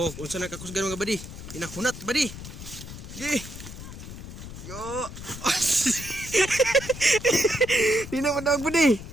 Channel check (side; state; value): left; noise; rumble, 12 dB below the sound